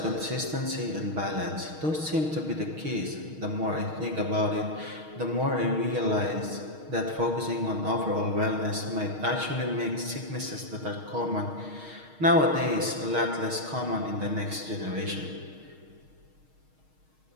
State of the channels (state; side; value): late; left; 6.4 ms